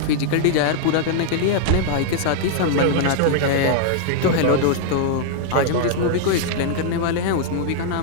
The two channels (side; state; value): both; different; correlation -0.01